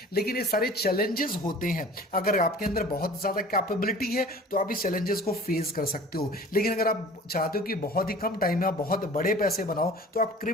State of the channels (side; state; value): both; normal; correlation 0.44